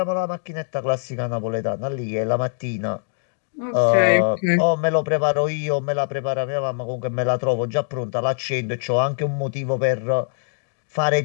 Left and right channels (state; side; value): silent; right; digital silence